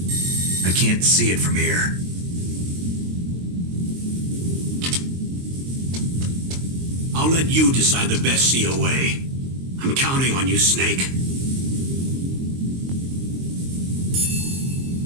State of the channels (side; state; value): left; late; 22 ms